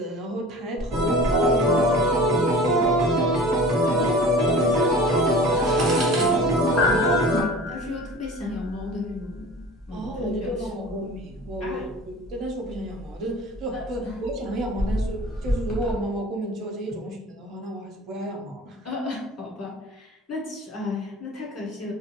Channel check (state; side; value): normal; both; correlation 0.40